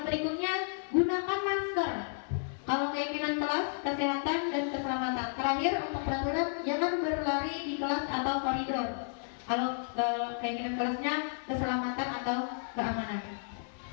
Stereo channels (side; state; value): right; silent; 56 dB below the other